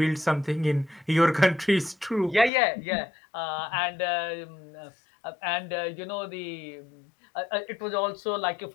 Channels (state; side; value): drops out; right; at 2.5 s